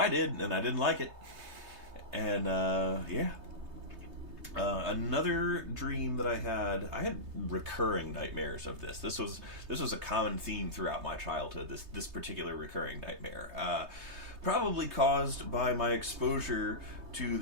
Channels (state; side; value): late; left; 3.3 ms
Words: did, and I didn't like it. And another dream that I had recurring nightmares of this. This was a common theme throughout my childhood. This particular recurring nightmare, probably caused by my exposure to